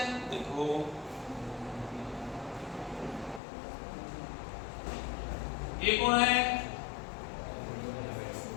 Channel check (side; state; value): right; drops out; at 3.4 s